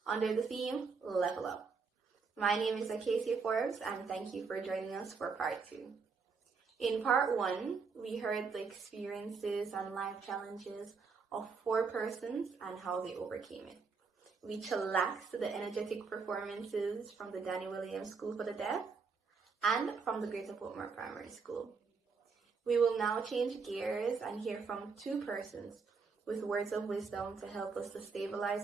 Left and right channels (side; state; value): left; quieter; 5.0 dB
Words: under the theme Level Up. My name is Acacia Forbes, and thank you for joining us for part 2. In part 1, we heard the experiences and life challenges of 4 persons and how they overcame it. We chillaxed to the energetic performances from the Danny Williams School for the Deaf and from the Greater Portmore Primary School. We will now change gears and hear from 2 persons with words of wisdom to help us to